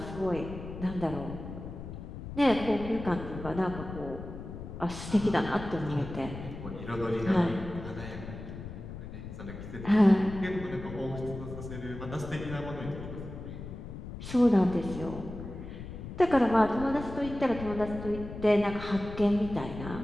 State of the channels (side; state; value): left; noise; rumble, 10 dB below the sound